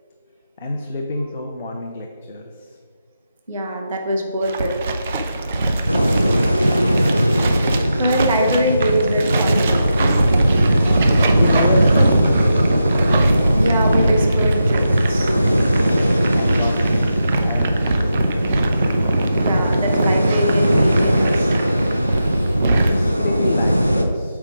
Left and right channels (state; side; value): inverted; both; correlation -0.88